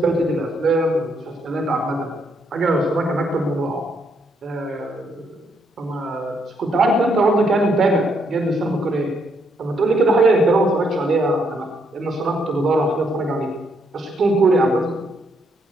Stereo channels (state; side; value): normal; both; correlation 0.74